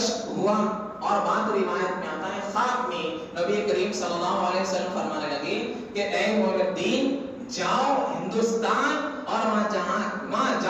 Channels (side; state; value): both; identical; correlation 1.00